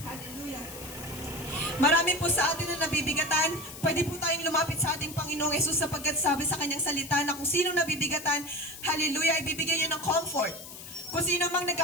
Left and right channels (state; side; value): noise; left; hiss, 13 dB below the sound